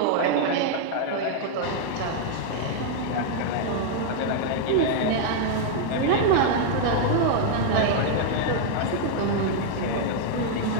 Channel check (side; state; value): both; different; correlation 0.00